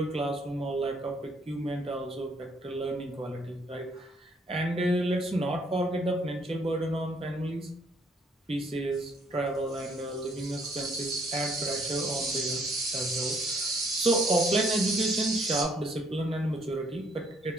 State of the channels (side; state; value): both; normal; correlation 0.66